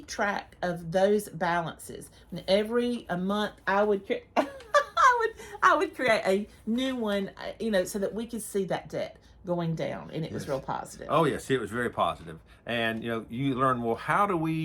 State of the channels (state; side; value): identical; both; correlation 1.00